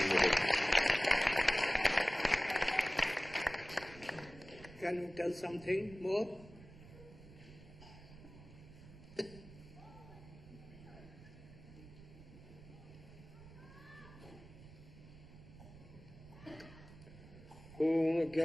Can you tell something more? Om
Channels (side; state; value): right; noise; rumble, 18 dB below the sound